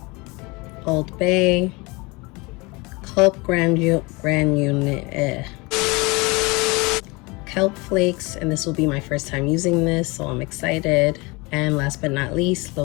Old Bay, kelp kelp flakes, and this will be my first time using this, so I'm excited. And last but not least,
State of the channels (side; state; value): right; quieter; 25.9 dB